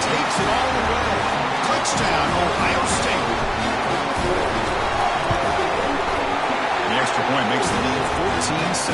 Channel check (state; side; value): identical; both; correlation 1.00